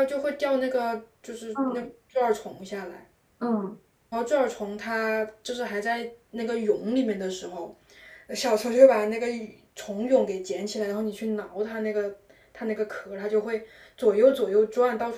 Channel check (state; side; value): identical; both; correlation 1.00